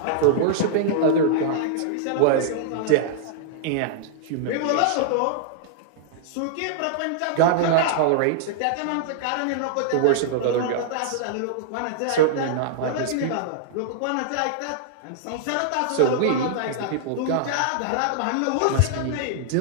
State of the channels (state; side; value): different; both; correlation -0.01